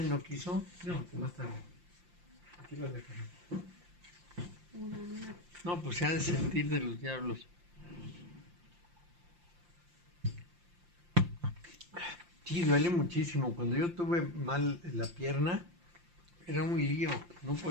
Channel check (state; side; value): late; left; 5.7 ms